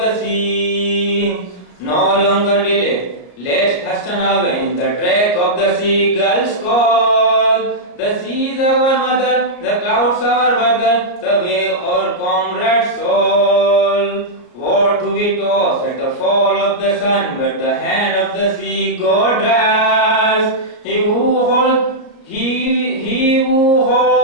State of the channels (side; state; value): right; late; 34 ms